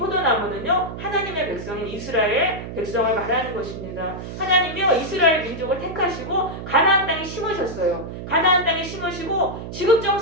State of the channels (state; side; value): noise; right; hum, 9 dB below the sound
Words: 하나님의 백성인 이스라엘 백성을 말하는 것입니다. 하나님이요, 이스라엘 민족을 택하시고 가나안 땅에 심으셨어요. 가나안 땅에 심으시고